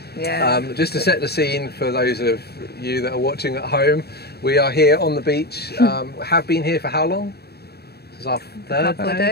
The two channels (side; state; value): right; late; 0.47 ms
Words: Yeah. Just to set the scene for those of you that are watching at home, we are here on the beach. Have been here for how long? This is our third